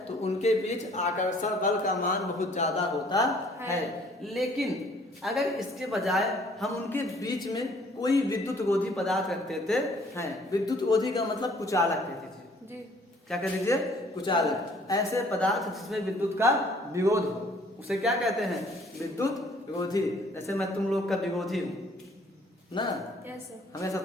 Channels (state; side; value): normal; both; correlation 0.58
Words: तो उनके बीच आकर्षण बल का मान बहुत ज्यादा होता है। लेकिन अगर इसके बजाय हम उनके बीच में कोई विद्युत रोधी पदार्थ रख देते हैं, विद्युत रोधी का मतलब कुचालक कहते थे, क्या कह दीजिए, कुचालक। ऐसे पदार्थ जिसमें विद्युत का विरोध हो उसे क्या कहते हैं, विद्युत रोधी। जैसे मैं तुम लोग का विरोधी हूँ ना, हमेशा